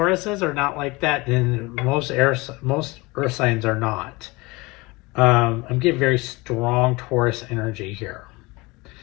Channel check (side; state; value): right; quieter; 23.8 dB